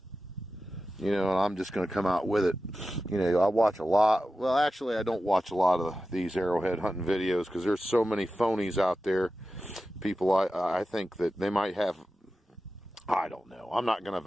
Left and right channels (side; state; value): both; normal; correlation 0.93